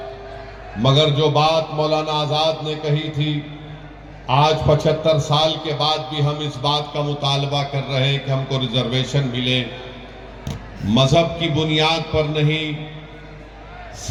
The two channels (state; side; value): identical; both; correlation 1.00